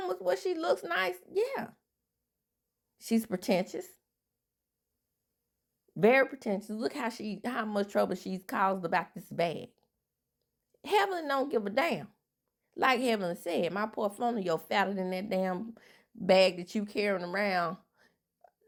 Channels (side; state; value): both; identical; correlation 1.00